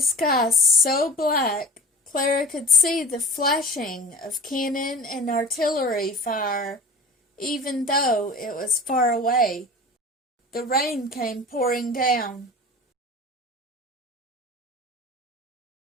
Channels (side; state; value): both; normal; correlation 0.37